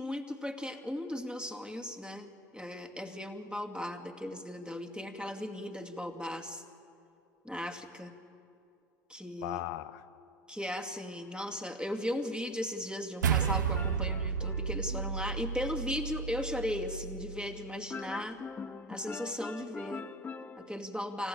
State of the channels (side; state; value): both; normal; correlation 0.26